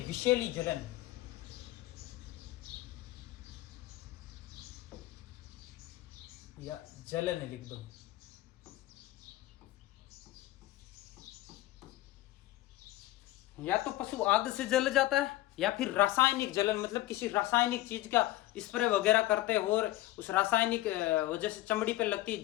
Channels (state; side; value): quieter; right; 16.8 dB